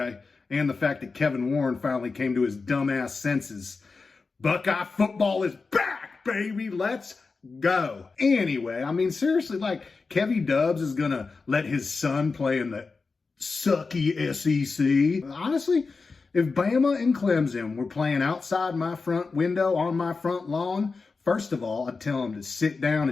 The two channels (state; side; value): quieter; right; 4.3 dB